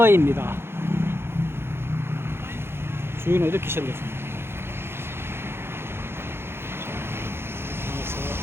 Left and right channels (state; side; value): late; left; 0.11 ms